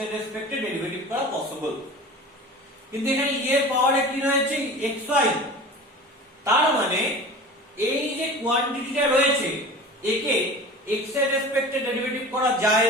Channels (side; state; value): both; normal; correlation 0.37